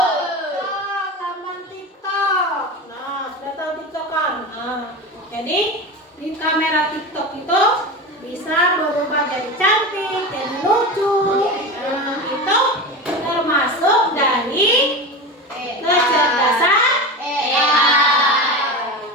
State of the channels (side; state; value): both; normal; correlation 0.25